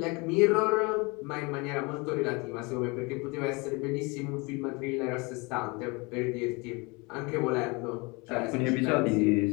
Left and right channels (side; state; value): right; quieter; 27.8 dB